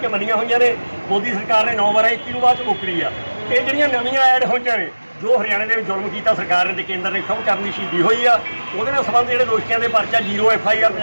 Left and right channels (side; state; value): both; inverted; correlation -1.00